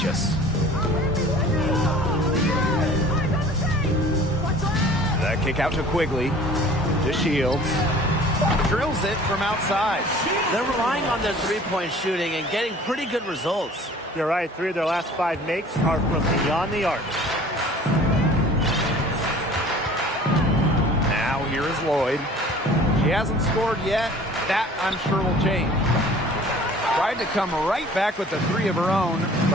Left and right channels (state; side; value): normal; both; correlation 0.48